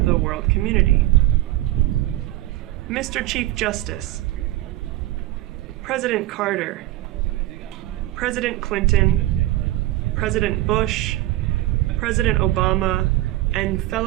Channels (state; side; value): quieter; left; 16.2 dB